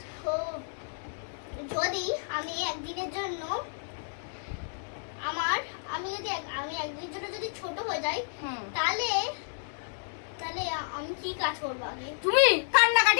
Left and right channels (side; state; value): right; silent; digital silence